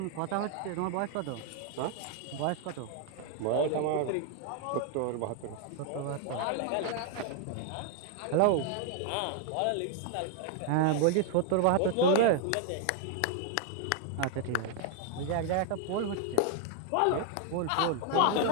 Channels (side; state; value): both; different; correlation 0.00